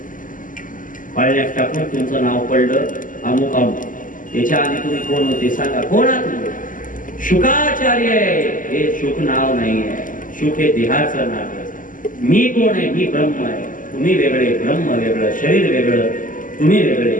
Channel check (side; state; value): right; late; 0.38 ms